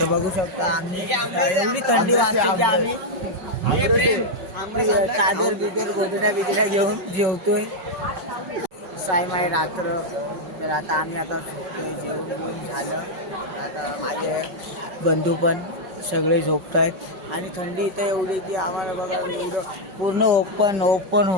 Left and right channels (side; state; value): left; late; 5.4 ms